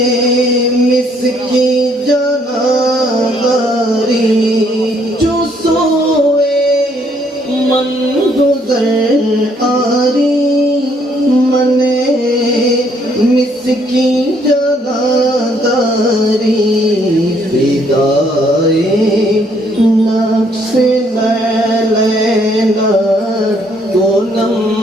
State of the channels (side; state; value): both; normal; correlation 0.67